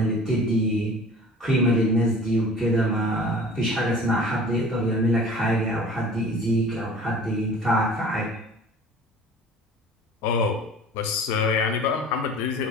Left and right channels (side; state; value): both; normal; correlation 0.43